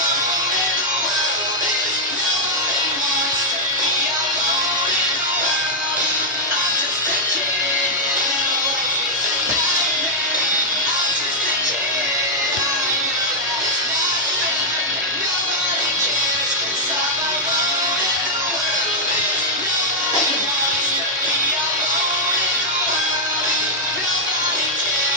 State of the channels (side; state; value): both; normal; correlation -0.04